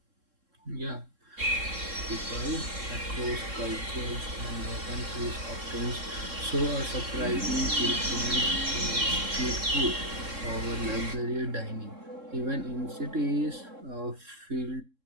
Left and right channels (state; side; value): late; left; 3.7 ms